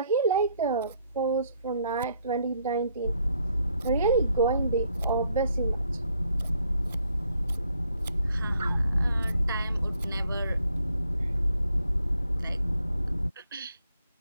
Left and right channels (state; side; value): inverted; both; correlation -0.70